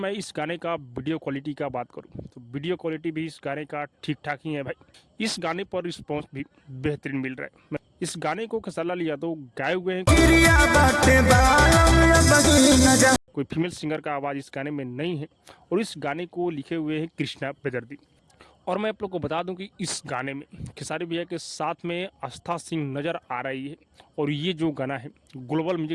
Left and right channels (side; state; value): both; identical; correlation 1.00